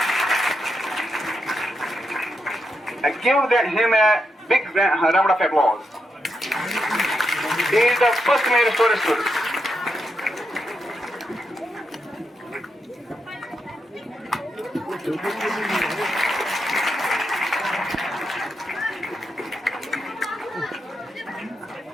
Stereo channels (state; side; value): normal; both; correlation 0.84